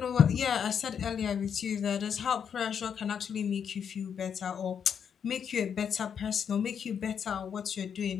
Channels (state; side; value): quieter; right; 7.6 dB